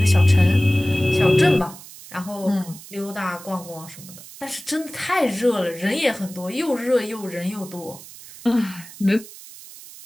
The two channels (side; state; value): right; noise; hiss, 17 dB below the sound